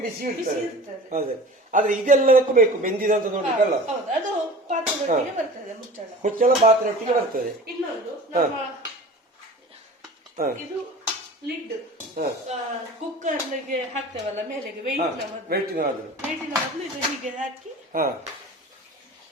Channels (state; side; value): normal; both; correlation 0.39